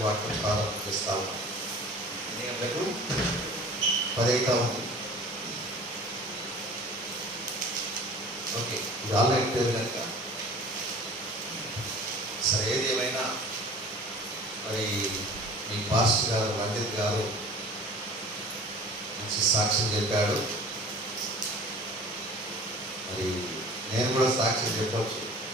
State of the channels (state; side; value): normal; both; correlation 0.44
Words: వాక్యం ప్రారంభం చేస్తాము. ఎన్ని గంటలకు? 10 అవుతా ఉంది. ఓకే, ఇది ఆన్లైన్ పేరు కనుక సరే. ఏది ఏమైనా మరి మీ పాస్టర్ గారు రంజిత్ గారు మంచి సాక్ష్యం చెప్పాడు. మరి నేను కూడా సాక్ష్యం చెప్పవచ్చు